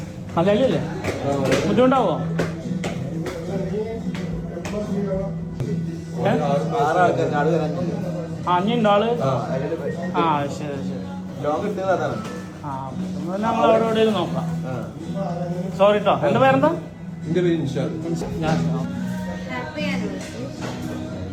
മലയാളിയല്ലേ? ബുദ്ധിമുട്ടാവോ? അഞ്ഞുണ്ടോ ആള്? ആ ശരി ശരി. ആ നമ്മൾ അവിടെ നോക്കാം. സോറി കേട്ടോ. എന്റെ പേരെന്താ?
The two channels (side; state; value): both; identical; correlation 1.00